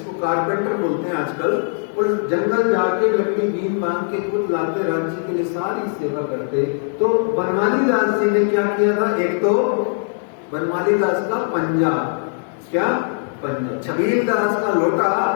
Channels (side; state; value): right; silent; digital silence